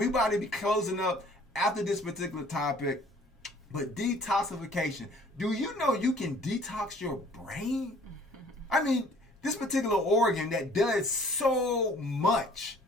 about to be closing up after this particular topic. But detoxification. Do you know you can detox your brain? I mean, this particular organ that does so much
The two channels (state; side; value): normal; both; correlation 0.54